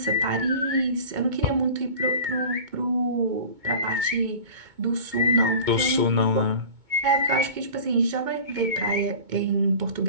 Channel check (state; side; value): late; left; 2.2 ms